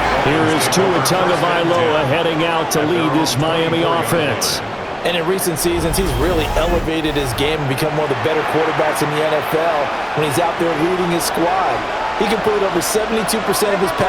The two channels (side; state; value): both; identical; correlation 1.00